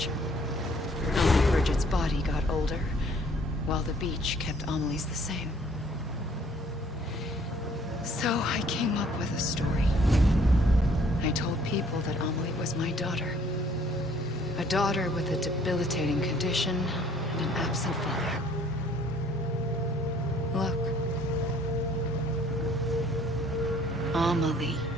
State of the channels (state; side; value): normal; both; correlation 0.59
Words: Only Bridget's body got older, while the beach kept Amelie's the same. So I came up with a story. I told people that Amelie was my daughter. A daughter with a debilitating condition and an absent father. Look. Amelie.